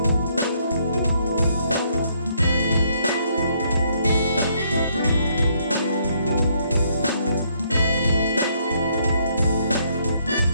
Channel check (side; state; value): both; inverted; correlation -0.70